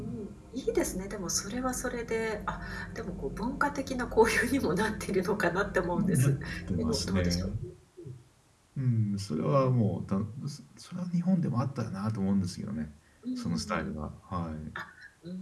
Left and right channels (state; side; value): identical; both; correlation 1.00